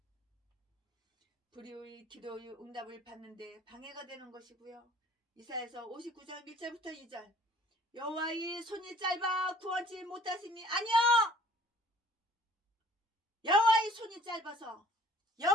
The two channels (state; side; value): normal; both; correlation 0.53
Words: 불의의 기도의 응답을 받는데 방해가 되는 것이고요. 이사야서 59장 1절부터 2절 여호와의 손이 짧아 구원치 못하심이 아니요. 여호와의 손이 짧아서